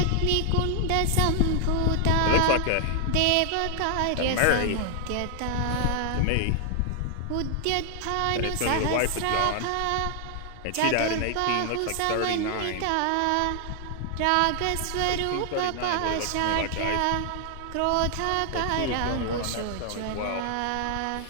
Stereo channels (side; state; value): both; different; correlation 0.00